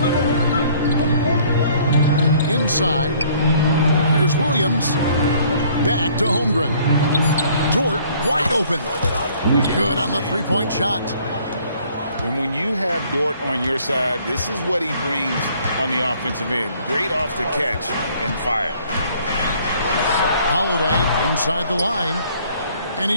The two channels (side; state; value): both; inverted; correlation -0.59